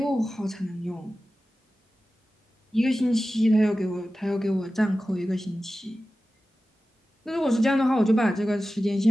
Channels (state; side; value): normal; both; correlation 0.95